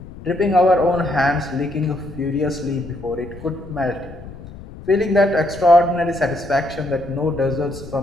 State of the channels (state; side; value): noise; left; rumble, 15 dB below the sound